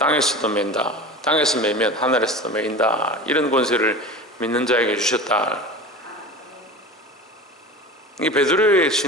맨다, 땅에서 매면 하늘에서도 매인다, 이런 권세를 믿는 자에게 주셨다. 이 베드로의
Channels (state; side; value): normal; both; correlation 0.33